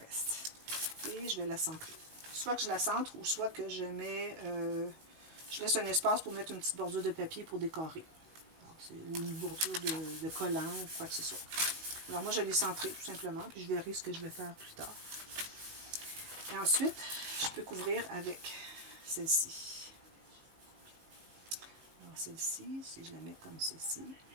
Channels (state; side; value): late; left; 19 ms